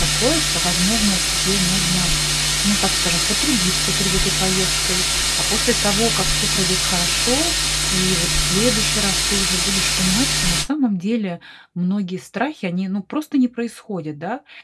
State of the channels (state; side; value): identical; both; correlation 1.00